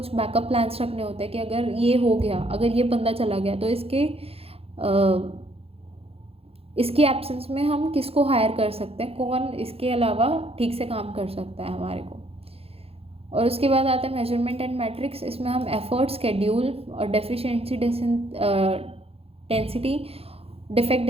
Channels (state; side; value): late; left; 0.28 ms